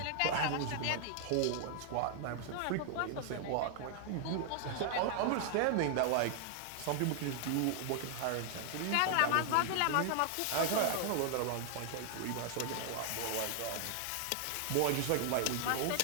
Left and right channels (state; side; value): different; both; correlation 0.00